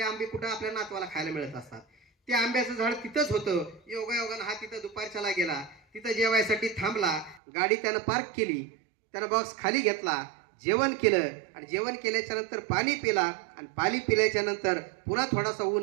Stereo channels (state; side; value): drops out; left; at 7.4 s